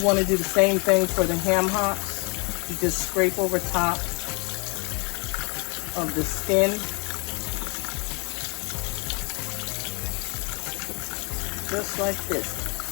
want to do the same thing for the ham hocks. You just scrape over top of the skin. Just like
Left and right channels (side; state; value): right; quieter; 31.9 dB